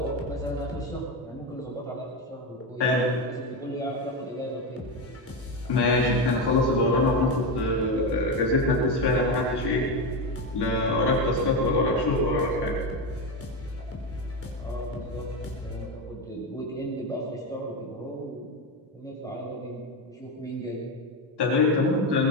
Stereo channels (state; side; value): normal; both; correlation 0.14